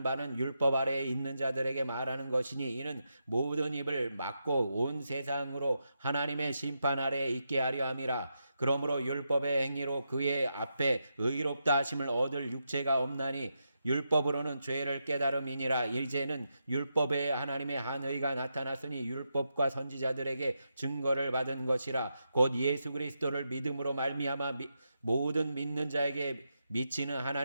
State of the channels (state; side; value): inverted; both; correlation -0.85